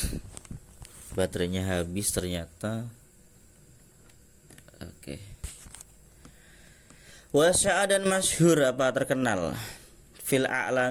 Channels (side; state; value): both; identical; correlation 1.00